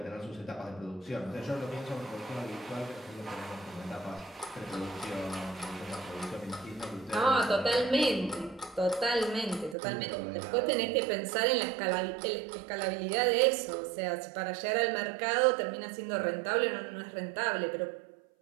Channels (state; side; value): drops out; left; at 9.8 s